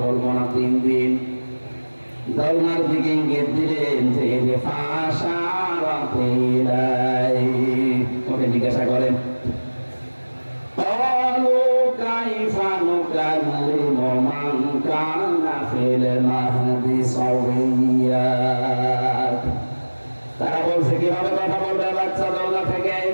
বলবো না 3 দিন। দোলনার দিকে ইঙ্গিত দিলেন যে ওকে জিজ্ঞাসা করেন তারা বলছে কিভাবে কথা বলবে বাচ্চা দোলনা থেকে।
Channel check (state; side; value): inverted; both; correlation -1.00